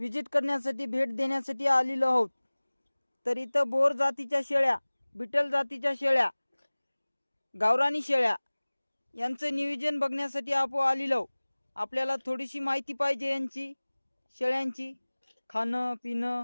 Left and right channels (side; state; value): both; inverted; correlation -1.00